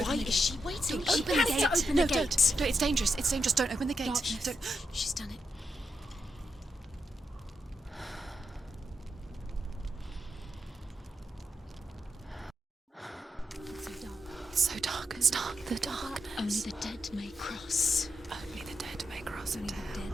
Why is she waiting? Open the gate. Open the gate. Don't. It's dangerous. It's dangerous. Don't open the gate. Don't. She's done it. It's so dark. It's dark. The darkness. Only the dead may cross. Only the dead may cross Only into the hell. dead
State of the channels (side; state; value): both; normal; correlation 0.84